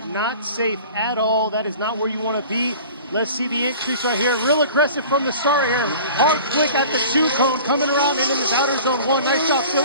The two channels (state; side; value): inverted; both; correlation -0.42